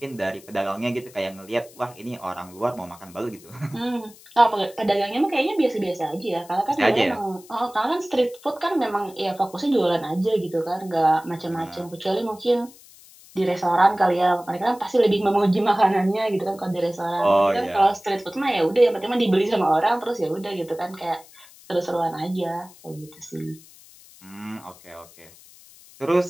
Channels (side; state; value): left; noise; hiss, 23 dB below the sound